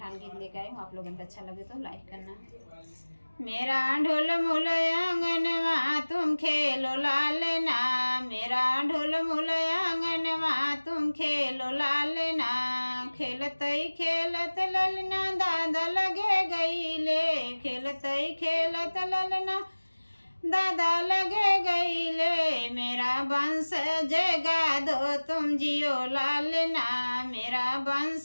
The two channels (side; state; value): both; inverted; correlation -1.00